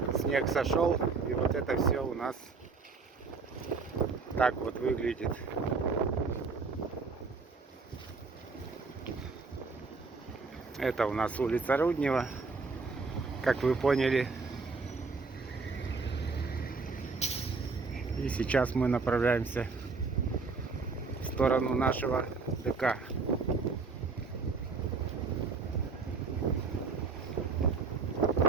Снег сошел, и вот это все у нас так вот выглядит. Это у нас улица Руднева, как вы поняли. И сейчас мы направляемся в сторону нашего ДК.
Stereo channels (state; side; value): quieter; left; 4.5 dB